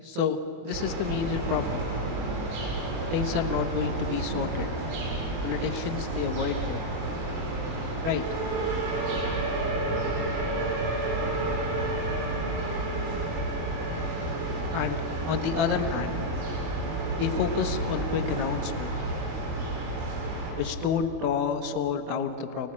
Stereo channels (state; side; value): late; left; 24 ms